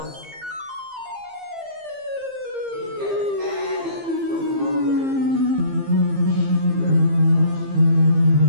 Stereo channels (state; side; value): late; left; 15 ms